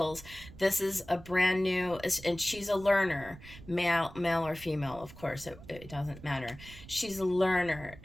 This is a brand new, and she's a learner, male or female, of course, it doesn't matter. She's a learner.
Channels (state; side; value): noise; right; rumble, 17 dB below the sound